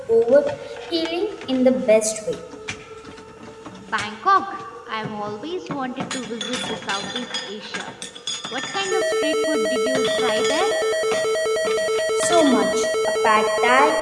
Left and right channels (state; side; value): identical; both; correlation 1.00